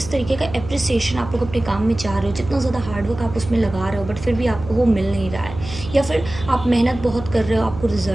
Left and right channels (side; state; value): right; noise; hum, 12 dB below the sound